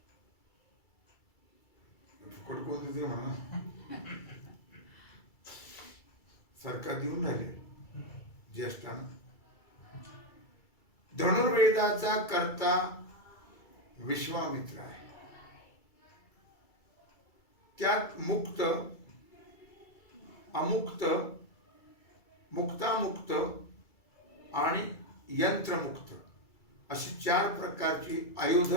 फुकट कोण देते म्हणा, सरकार देऊन राहिले ज्येष्ठांना. धनुर्वेदाचा कर्ता विश्वामित्र आहे. त्यात मुक्त, अमुक्त, मुक्तामुक्त आणि यंत्रमुक्त अशी 4 प्रकारची आयुध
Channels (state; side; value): late; right; 2.3 ms